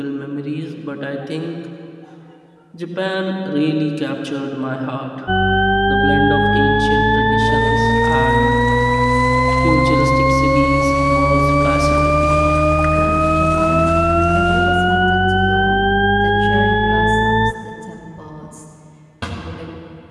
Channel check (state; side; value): identical; both; correlation 1.00